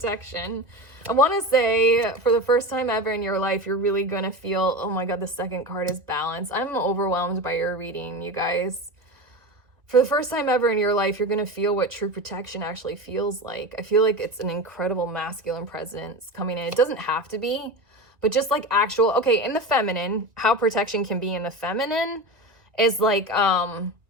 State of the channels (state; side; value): late; left; 1.8 ms